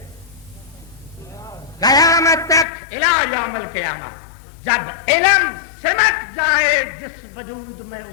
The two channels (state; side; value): drops out; right; at 2.7 s